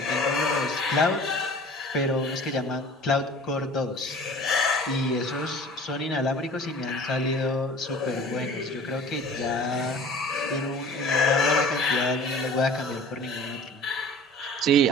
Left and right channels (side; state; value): both; normal; correlation 0.44